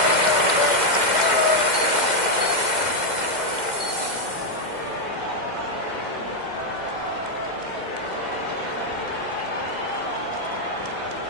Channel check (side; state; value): left; late; 2.1 ms